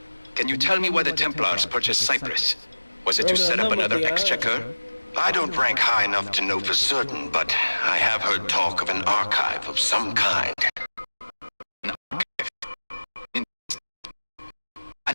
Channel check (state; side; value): inverted; both; correlation -1.00